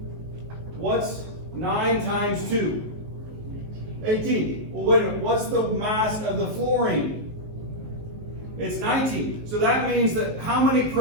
what's 9 times 2? 18. Well, wait a minute, what's the mass of the fluorine? It's 19. So that means that how many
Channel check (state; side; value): late; left; 19 ms